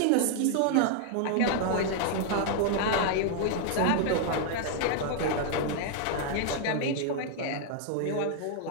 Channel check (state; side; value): different; both; correlation 0.00